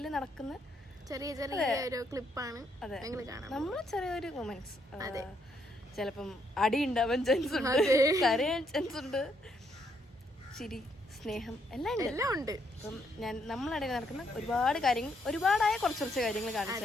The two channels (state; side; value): normal; both; correlation 0.74